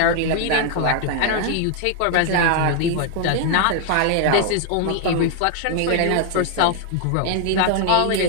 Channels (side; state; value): both; different; correlation 0.00